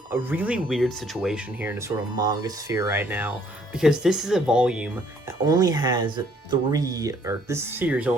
a really weird situation here in the sort of manga sphere right now, because this is a volume that only has 3, or this series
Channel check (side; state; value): both; normal; correlation 0.64